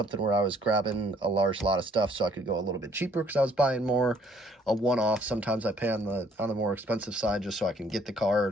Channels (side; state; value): both; normal; correlation 0.63